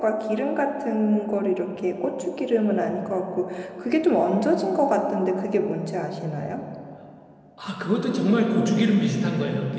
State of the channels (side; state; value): both; identical; correlation 1.00